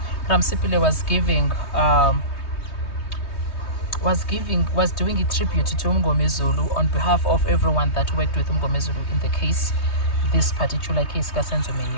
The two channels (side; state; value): right; late; 3.2 ms